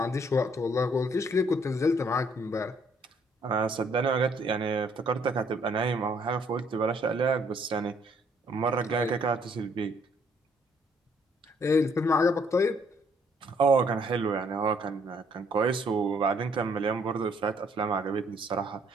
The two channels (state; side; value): normal; both; correlation 0.65